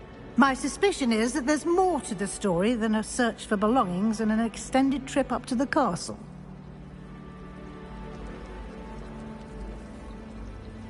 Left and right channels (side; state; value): both; identical; correlation 1.00